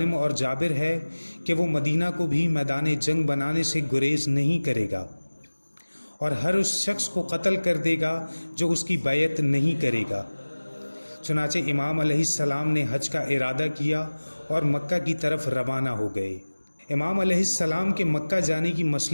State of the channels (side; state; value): both; inverted; correlation -1.00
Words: اور جابر ہے کہ وہ مدینہ کو بھی میدان جنگ بنانے سے گریز نہیں کرے گا، اور ہر اس شخص کو قتل کر دے گا جو اس کی بیعت نہیں کرے گا۔ چنانچہ امام علیہ السلام نے حج کا ارادہ کیا اور مکہ کی طرف روانہ ہو گئے۔ امام علیہ السلام کے مکہ جانے کی